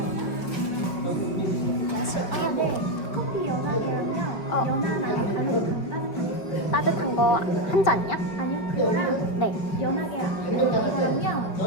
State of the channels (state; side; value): late; right; 5.1 ms